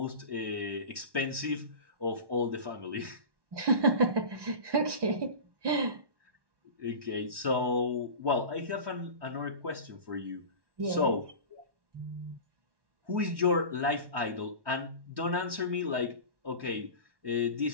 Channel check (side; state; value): left; late; 1.1 ms